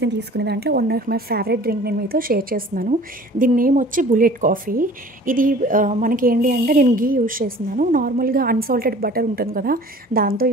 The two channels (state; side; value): normal; both; correlation 0.47